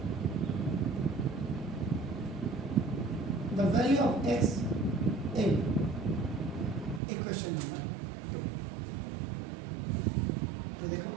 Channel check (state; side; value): drops out; left; at 7.0 s